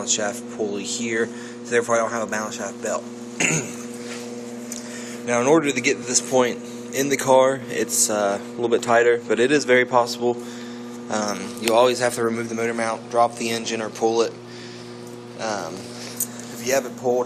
shaft pulley here, so therefore I don't have a balance shaft belt. Now in order to get to this point in the car, it's a little bit tighter, but it is very possible. You always have to remove the motor mount, drop the engine, or pull it. If you have it pulled,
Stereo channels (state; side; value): identical; both; correlation 1.00